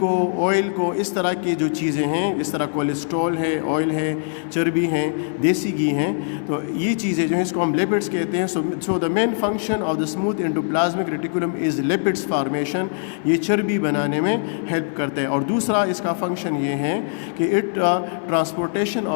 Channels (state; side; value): silent; right; 58 dB below the other